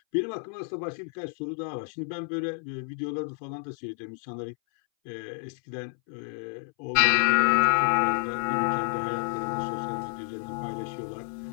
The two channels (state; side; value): silent; right; 59 dB below the other